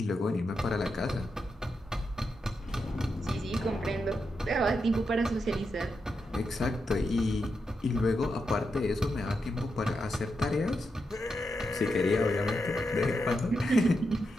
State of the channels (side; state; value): both; normal; correlation 0.85